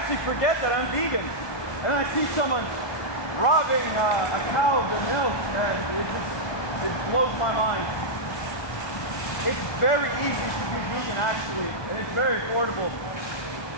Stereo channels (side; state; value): right; late; 1.2 ms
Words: forget that I'm vegan. And then I see someone robbing a cow of their milk, and it blows my mind. It's very easy to be vegan, actually, and it's very affordable.